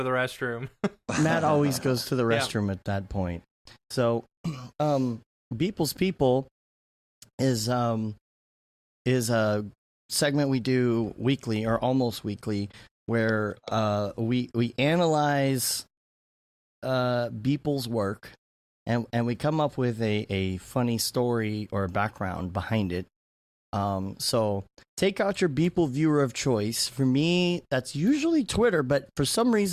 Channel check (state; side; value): identical; both; correlation 1.00